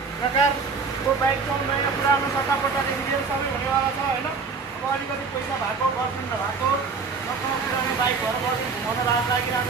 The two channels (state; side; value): quieter; left; 4.9 dB